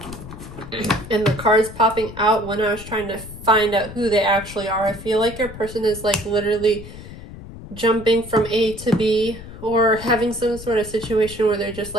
and the cards popping out when I was trying to find out who they actually are, I feel like your person is like literally jumping from A to B, or having some sort of situation where they're just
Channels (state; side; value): noise; left; rumble, 14 dB below the sound